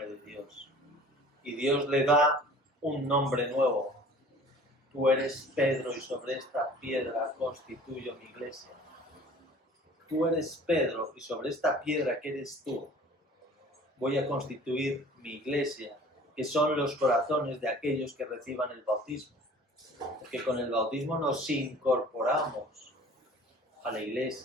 de Dios. Y Dios le da un nombre nuevo. Tú eres Pedro y sobre esta piedra constituyo mi iglesia. Tú eres Pedro y sobre esta piedra que eres tú voy a constituir mi iglesia, que son los corazones de aquellos que reciban el bautismo. Porque con el bautismo nos incorporamos a la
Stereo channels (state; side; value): normal; both; correlation 0.47